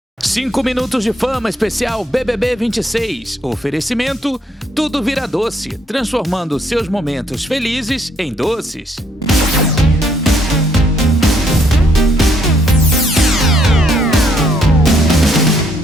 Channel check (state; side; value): normal; both; correlation 0.70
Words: 5 minutos de fama especial BBB 26. Oferecimento, tudo vira doce, transformando seus momentos felizes em doces.